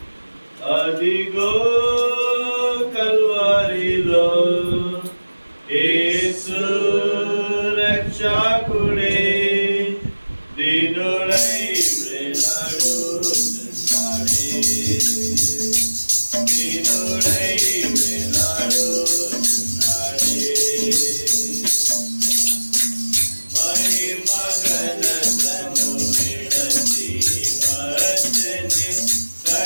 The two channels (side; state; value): both; inverted; correlation -1.00